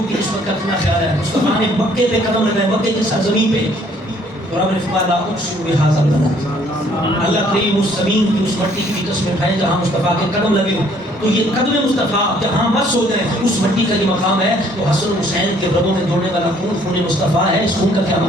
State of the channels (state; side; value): normal; both; correlation 0.62